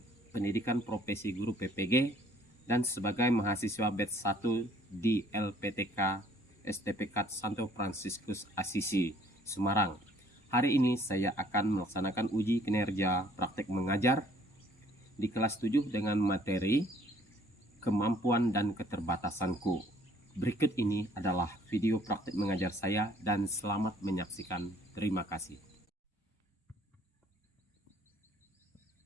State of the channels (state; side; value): normal; both; correlation 0.59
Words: pendidikan profesi guru PPG dan sebagai mahasiswa batch 1 di LPTK STPK Santo Fransiskus Asisi, Semarang. Hari ini saya akan melaksanakan uji kinerja praktek mengajar di kelas 7 dengan materi kemampuan dan keterbatasanku. Berikut ini adalah video praktek mengajar saya dan selamat menyaksikan. Terima kasih.